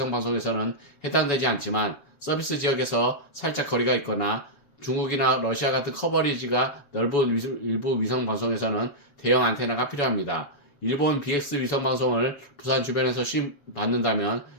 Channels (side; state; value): right; late; 7.4 ms